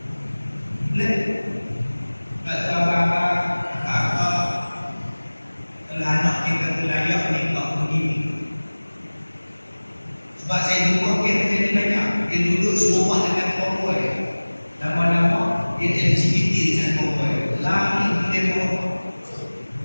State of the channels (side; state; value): both; inverted; correlation -1.00